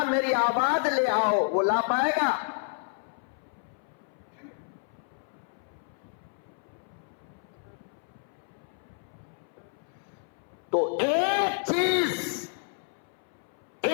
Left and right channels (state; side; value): silent; right; 58 dB below the other